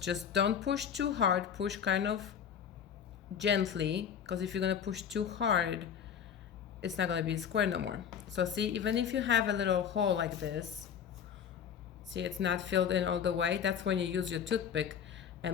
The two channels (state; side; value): quieter; right; 8.1 dB